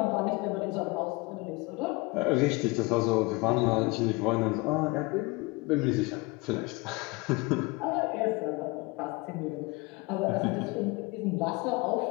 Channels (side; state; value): right; quieter; 25.5 dB